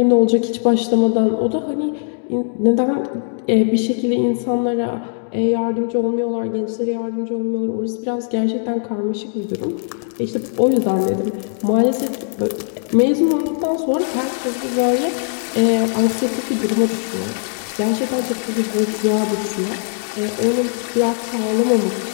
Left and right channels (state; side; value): silent; right; digital silence